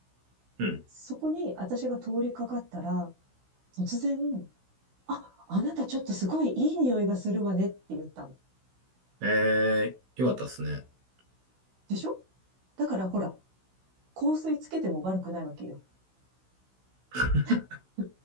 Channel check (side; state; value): left; late; 16 ms